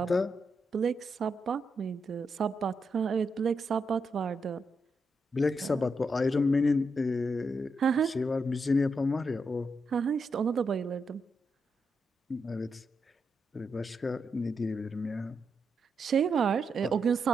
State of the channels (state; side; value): normal; both; correlation 0.83